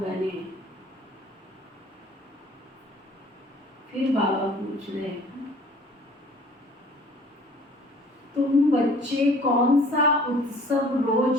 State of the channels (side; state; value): both; normal; correlation 0.52